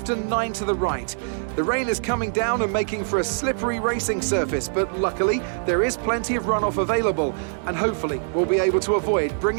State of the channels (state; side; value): silent; left; digital silence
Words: and 9 to the right. The rain is coming down and making for a slippery racing surface, but luckily there is plenty of runoff available, and hopefully we'll be able to avoid